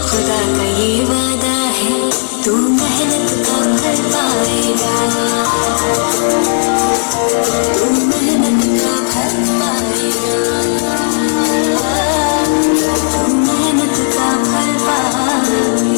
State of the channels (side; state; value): right; silent; digital silence